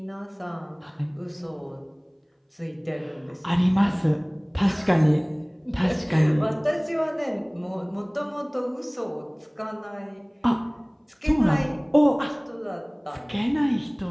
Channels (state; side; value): identical; both; correlation 1.00